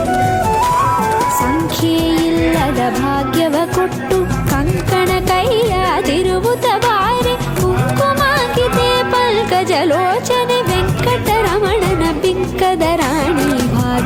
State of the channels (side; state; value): both; identical; correlation 1.00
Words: ಸಂಖ್ಯೆಯಿಲ್ಲದ ಭಾಗ್ಯವ ಕೊಟ್ಟು ಕಂಕಣ ಕೈಯಾದಿರುವುದ ಬಾರೆ, ಕುಂಕುಮಾಂಕಿತೆ ಪಲ್ಕಜಲೋಚನೆ ವೆಂಕಟರಮಣನ ಬಿಂಕದ ರಾಣಿ